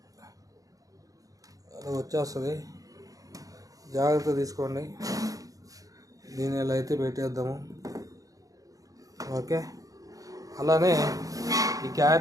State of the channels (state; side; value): late; left; 0.17 ms